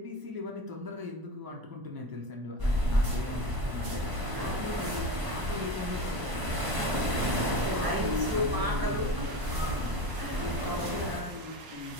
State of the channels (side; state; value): left; late; 1.0 ms